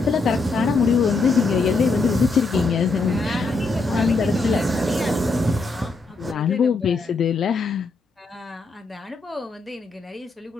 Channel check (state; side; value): quieter; right; 3.6 dB